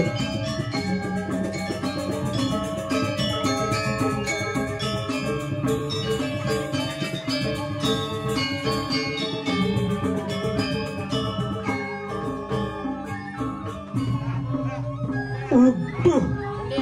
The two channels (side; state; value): both; identical; correlation 1.00